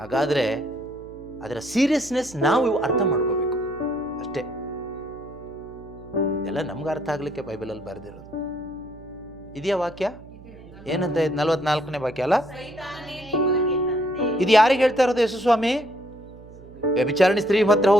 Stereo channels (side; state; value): right; noise; hum, 20 dB below the sound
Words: ಅದರ ಸೀರಿಯಸ್ನೆಸ್ ನಾವು ಅರ್ಥ ಮಾಡ್ಕೋಬೇಕು ಅಷ್ಟೇ. ಎಲ್ಲ ನಮ್ಗೆ ಅರ್ಥ ಆಗ್ಲಿಕ್ಕೆ ಬೈಬಲಲ್ಲಿ ಬರೆದಿರೋದು. ಇದೆಯಾ ವಾಕ್ಯ? ಏನಂತ 44ನೇ ವಾಕ್ಯ ಅಲ್ಲ? ಇದು ಯಾರಿಗೆ ಹೇಳ್ತಾ ಇರೋದು ಯೇಸು ಸ್ವಾಮಿ? ವ್ಯಭಿಚಾರಣಿ ಸ್ತ್ರೀ ಹತ್ರ